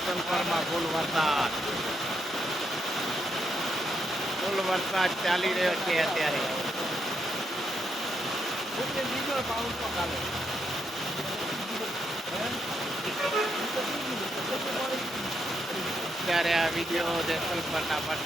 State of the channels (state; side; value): normal; both; correlation 0.79